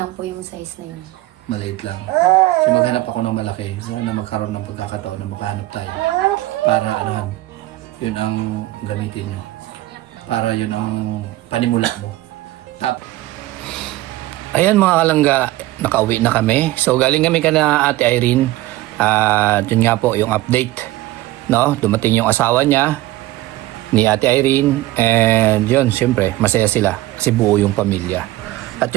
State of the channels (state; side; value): quieter; left; 17.1 dB